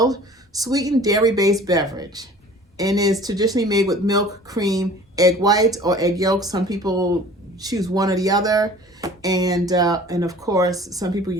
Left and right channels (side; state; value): both; normal; correlation 0.47